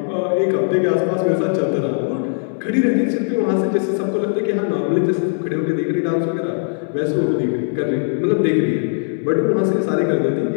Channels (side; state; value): right; silent; digital silence